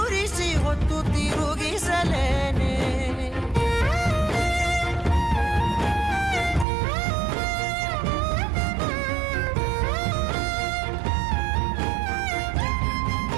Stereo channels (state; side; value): drops out; left; at 6.7 s